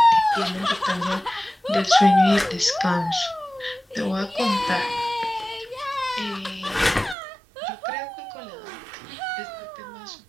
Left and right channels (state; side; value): drops out; left; at 7.2 s